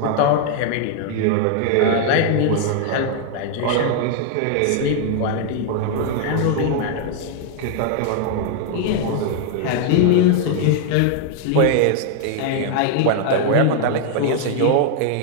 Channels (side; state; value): both; different; correlation 0.00